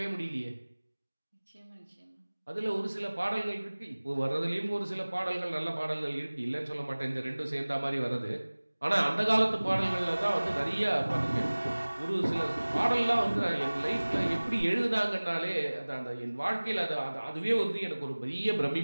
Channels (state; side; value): inverted; both; correlation -1.00